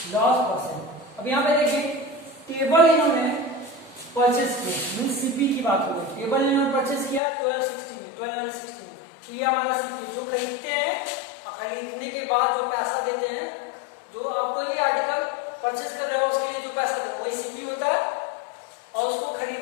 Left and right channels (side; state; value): right; drops out; at 7.2 s